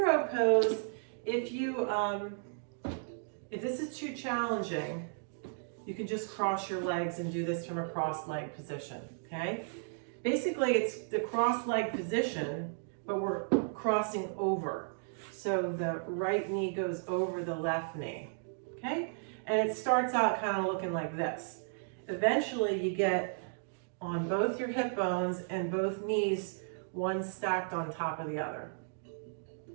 pose, if this is too challenging, you can just cross your legs and do this from a cross-leg position, okay? Basically, it's the cross-leg position, but we're crossing over. So the right knee goes over the left knee, okay? And it starts out kind of looking like this. Eventually, you get on both your hip bones and both knees, one stacked on top of the other.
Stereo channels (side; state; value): left; silent; digital silence